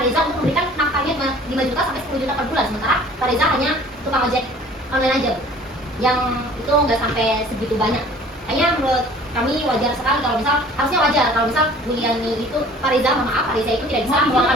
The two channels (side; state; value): both; normal; correlation 0.49